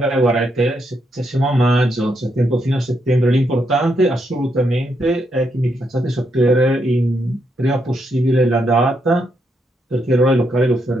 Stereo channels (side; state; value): both; normal; correlation 0.79